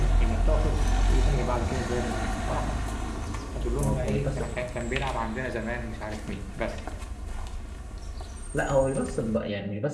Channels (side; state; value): both; identical; correlation 1.00